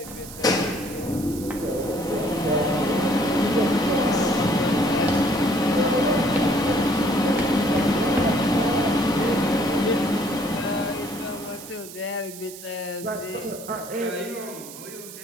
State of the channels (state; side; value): noise; right; hiss, 14 dB below the sound